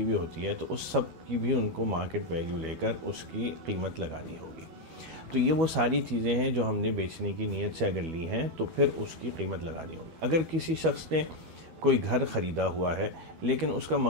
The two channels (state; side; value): late; left; 12 ms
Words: ہوئی ہوتی ہے، تو اس سب کی بھی ان کو مارکیٹ ویلیو لے کر اس کی قیمت لگانی ہوگی۔ تو یہ وہ ساری چیزیں ہیں جو ہم نے بیچنے کی نیت سے اگر لی ہیں تو پھر اس کی قیمت لگانی ہوگی۔ اگر کسی شخص نے کوئی گھر خریدا ہوا ہے لیکن اس کا